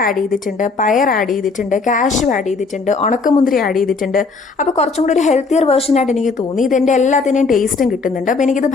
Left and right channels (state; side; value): quieter; right; 4.4 dB